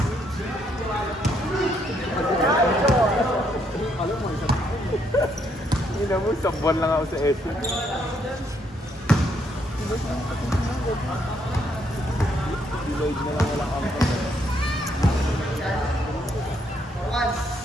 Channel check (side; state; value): both; normal; correlation 0.73